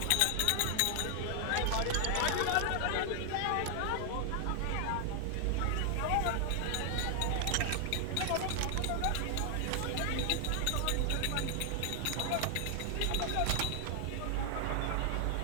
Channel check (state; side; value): different; both; correlation 0.00